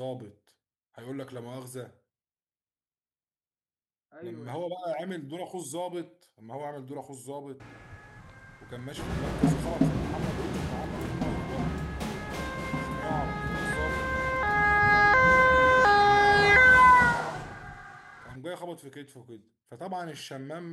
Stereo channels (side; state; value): both; identical; correlation 1.00